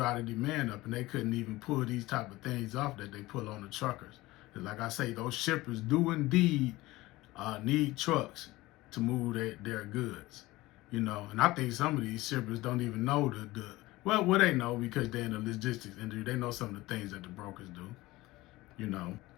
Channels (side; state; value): right; quieter; 19.2 dB